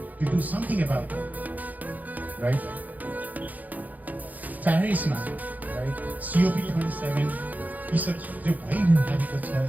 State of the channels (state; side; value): late; left; 0.080 ms